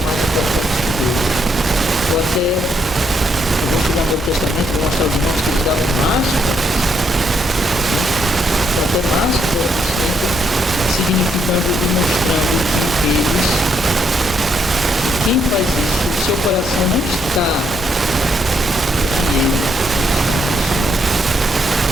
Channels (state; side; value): normal; both; correlation 0.75